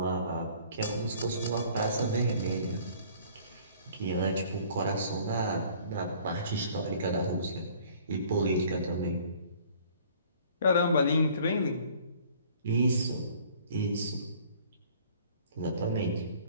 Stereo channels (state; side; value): inverted; both; correlation -0.54